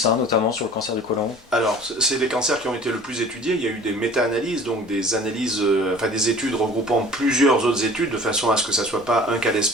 notamment sur le cancer du côlon. Alors, c'est des cancers qui ont été le plus étudiés. Il y a eu des méta-analyses, donc des analyses, des études regroupant plusieurs autres études, de façon à ce que ça ne soit pas un cas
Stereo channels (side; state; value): both; normal; correlation 0.46